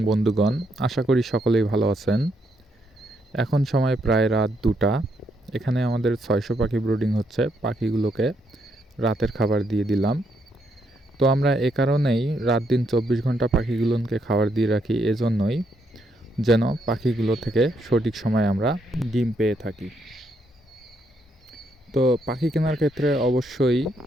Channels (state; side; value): normal; both; correlation 0.76